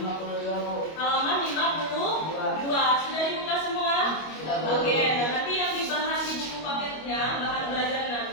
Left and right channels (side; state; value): right; late; 25 ms